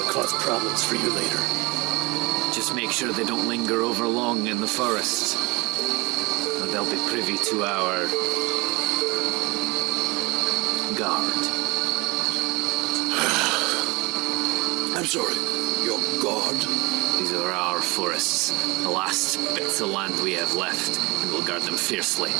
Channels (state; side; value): quieter; left; 25.2 dB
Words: cause problems for you later. Just make sure they don't linger over long in the forest, or they'll be privy to our guard. I'm sorry. Your god? These are our forests, the last bits of land we have left, and we'll guard them fiercely,